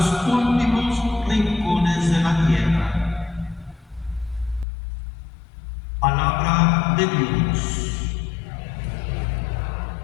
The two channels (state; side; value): drops out; right; at 4.7 s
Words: últimos rincones de la tierra. Palabra de Dios.